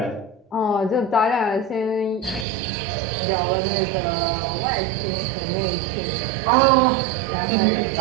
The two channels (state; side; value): drops out; left; at 2.5 s